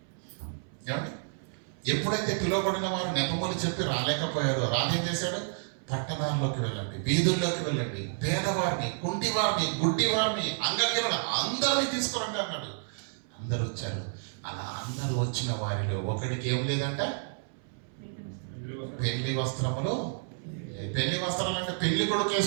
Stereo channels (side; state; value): left; silent; 58 dB below the other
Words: ఏమండి? ఎప్పుడైతే పిలువబడిన వారు నెపములు చెప్పి రాలేకపోయారో రాజు ఏం చేశాడు? పట్టణాల్లోకి వెళ్ళండి, వీధుల్లోకి వెళ్ళండి, పేదవారిని, కుంటివారిని, గుడ్డివారిని, అంగహీనులను అందరినీ తీసుకురండి అన్నాడు. అందరూ వచ్చారు. అలా అందరూ వచ్చిన వారిలో ఒకడికి ఏం లేదంట? పెళ్లి వస్త్రములు. పెళ్లి వస్త్రాలు అంటే పెళ్లి కొడుకు